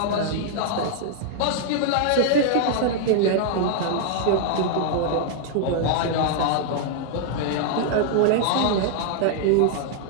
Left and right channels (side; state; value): both; different; correlation 0.00